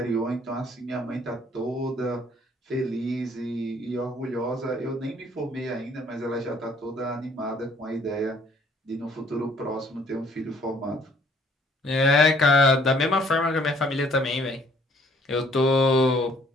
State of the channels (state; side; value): normal; both; correlation 0.61